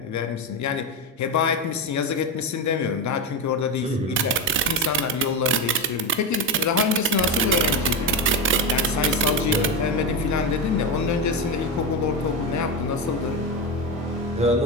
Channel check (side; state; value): both; normal; correlation 0.14